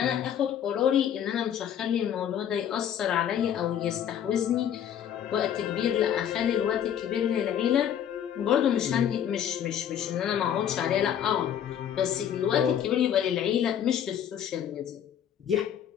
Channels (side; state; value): right; quieter; 9.5 dB